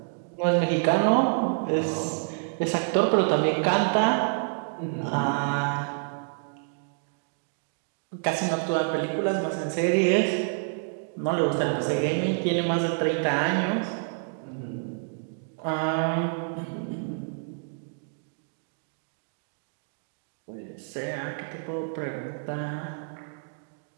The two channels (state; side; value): silent; left; digital silence